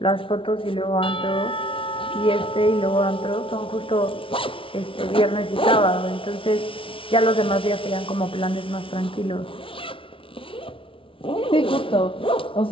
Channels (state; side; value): late; right; 0.25 ms